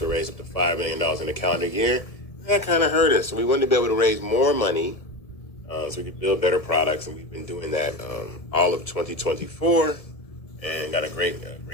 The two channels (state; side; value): late; right; 1.6 ms